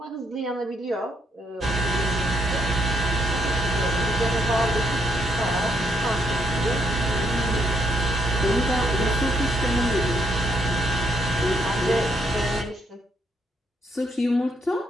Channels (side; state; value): both; normal; correlation 0.74